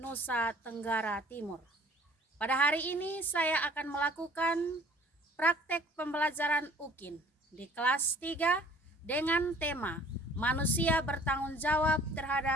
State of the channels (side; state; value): both; normal; correlation 0.53